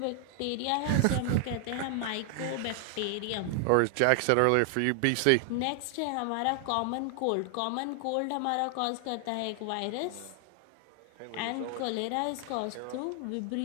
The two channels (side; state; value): both; different; correlation 0.00